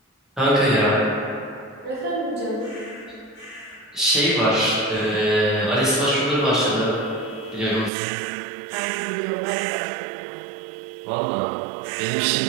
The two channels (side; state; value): left; drops out; at 7.9 s